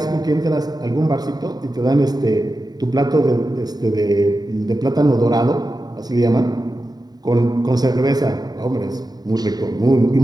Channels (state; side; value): late; left; 0.19 ms